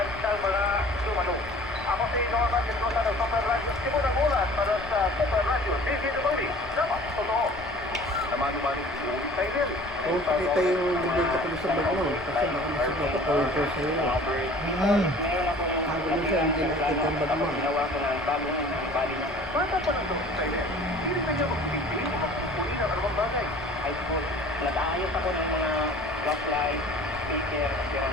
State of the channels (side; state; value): left; noise; rumble, 18 dB below the sound